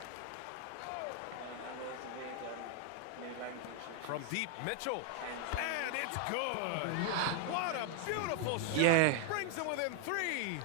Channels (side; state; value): both; different; correlation 0.00